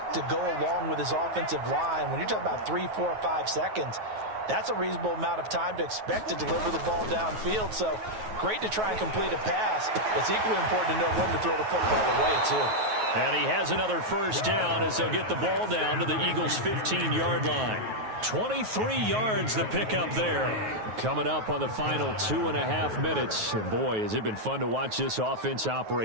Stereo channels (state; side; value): late; left; 9.3 ms